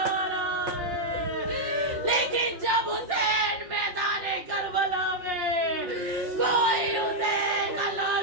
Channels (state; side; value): late; left; 5.5 ms